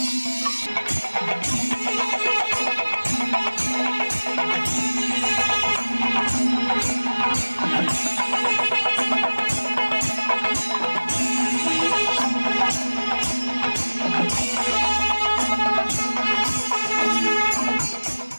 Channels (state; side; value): inverted; both; correlation -1.00